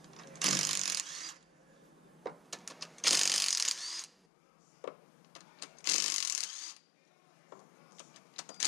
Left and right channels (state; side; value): drops out; right; at 4.2 s